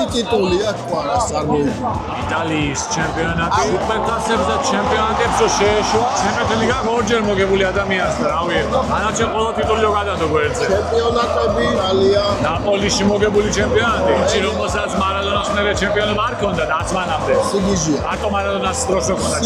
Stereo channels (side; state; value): both; identical; correlation 1.00